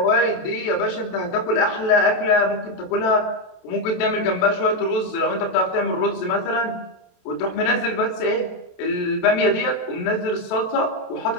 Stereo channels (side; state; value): right; late; 27 ms